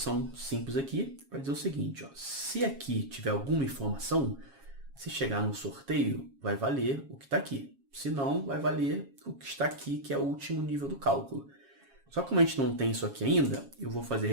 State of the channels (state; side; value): late; left; 7.3 ms